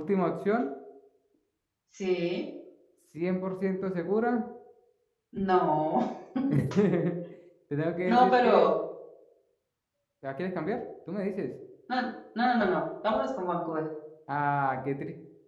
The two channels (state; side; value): identical; both; correlation 1.00